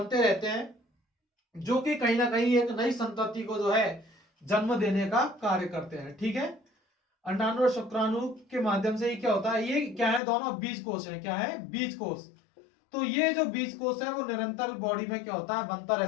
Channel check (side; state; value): right; drops out; at 10.2 s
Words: रहते हैं, जो कि कहीं ना कहीं एक नई संतति को जो है जन्म देने का कार्य करते हैं, ठीक है। अंडाणु और शुक्राणु के माध्यम से ये क्या होता है? ये क्या है? दोनों बीज कोश है। क्या है? बीज कोश। तो ये जो बीज कोश है वो निरंतर बॉडी में क्या होता है? बनता